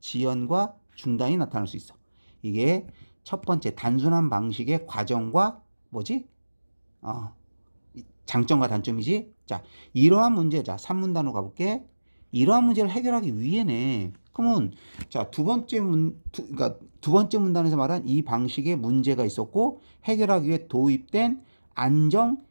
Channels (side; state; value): both; inverted; correlation -1.00